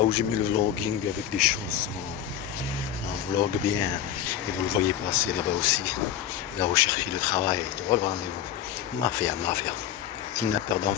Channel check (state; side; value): quieter; right; 10.3 dB